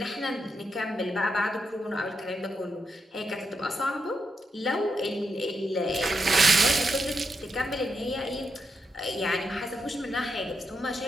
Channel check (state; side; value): normal; both; correlation 0.84